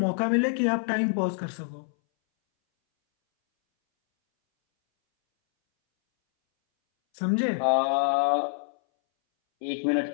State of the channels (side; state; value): right; silent; 61 dB below the other